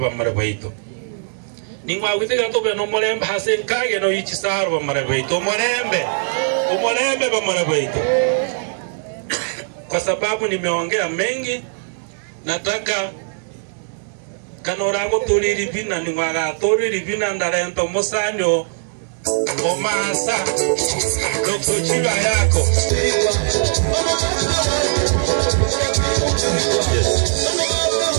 marabaito ningwa witega tobe no morembe hasen kage no ichisaru ba marabaito umorembe ba marabaito. Kwa sababu nimeongea mengi, nataka kanorago tuliri bina ningwa tuliri bina ndarento musanyo omasa Dr. Chilo Ayako.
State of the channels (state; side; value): silent; left; digital silence